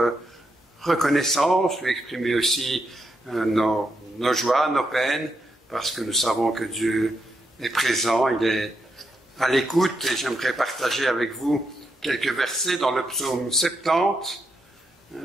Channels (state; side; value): normal; both; correlation 0.82